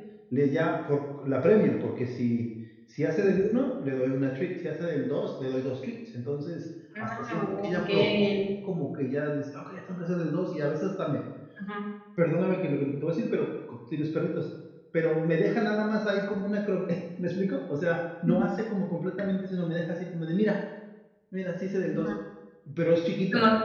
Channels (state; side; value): identical; both; correlation 1.00